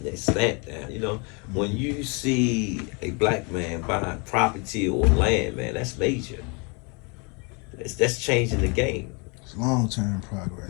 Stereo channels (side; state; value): right; quieter; 32.3 dB